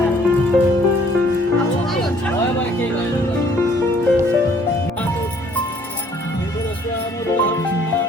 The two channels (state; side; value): normal; both; correlation 0.60